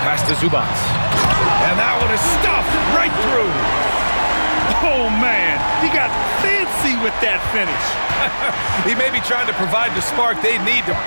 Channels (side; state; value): both; inverted; correlation -1.00